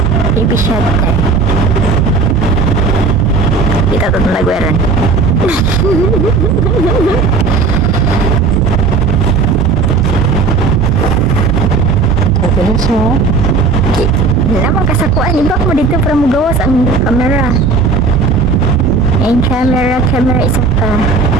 TV shutter. Kita to nalagweran. Okay na siya. Lamang kasakuan. Ibak mo dito para mo gawas ang camera. Yung camera isa pa.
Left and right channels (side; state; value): left; quieter; 4.4 dB